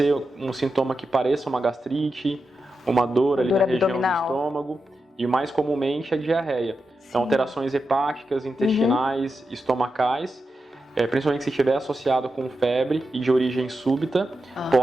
um sintoma que pareça uma gastrite, uma dor ali na região do estômago, e mais comumente a diarreia. Então, alterações hepáticas, intestinais, estomacais, principalmente se estiver associado com febre e de origem súbita,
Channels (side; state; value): both; normal; correlation 0.89